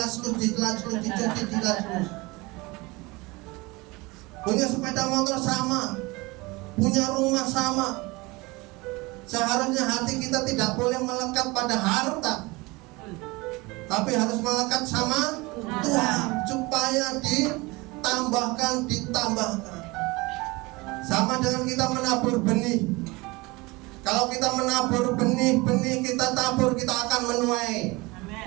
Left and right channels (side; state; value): left; quieter; 23.6 dB